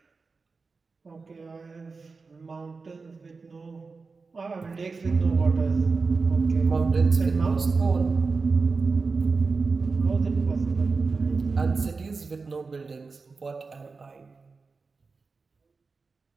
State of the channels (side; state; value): left; quieter; 4.3 dB